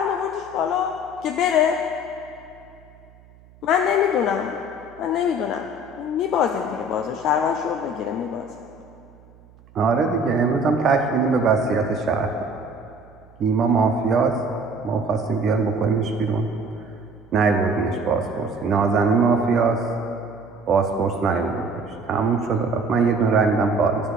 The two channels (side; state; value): right; noise; hum, 26 dB below the sound